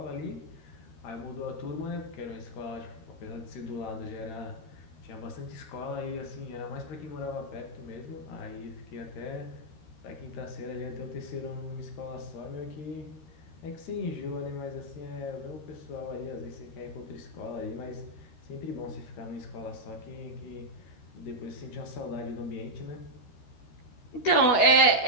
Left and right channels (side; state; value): right; late; 13 ms